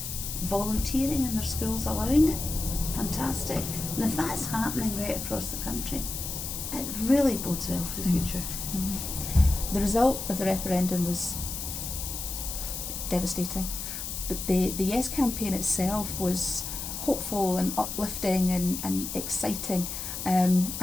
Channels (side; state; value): left; noise; hiss, 6 dB below the sound